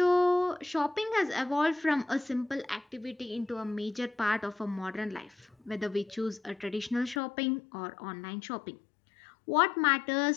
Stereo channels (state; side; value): drops out; right; at 7.2 s